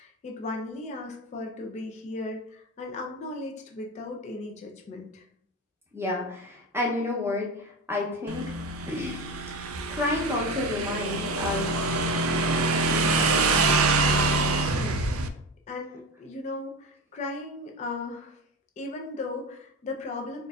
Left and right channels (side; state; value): both; normal; correlation 0.25